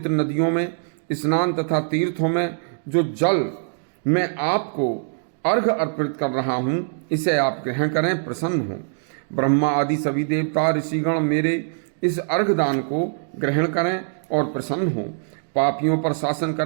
नदियों में स्नान तथा तीर्थों में जो जल मैं आपको अर्घ अर्पित कर रहा हूँ, इसे आप ग्रहण करें, प्रसन्न हो। ब्रह्मा आदि सभी देवता ऋषिगण मेरे इस अर्घ दान को ग्रहण करें और प्रसन्न हो। पापियों पर शासन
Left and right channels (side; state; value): left; silent; digital silence